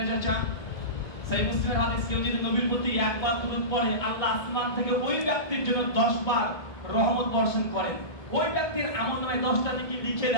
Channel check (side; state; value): right; late; 2.2 ms